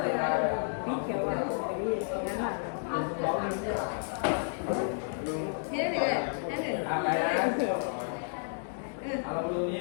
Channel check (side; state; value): right; silent; digital silence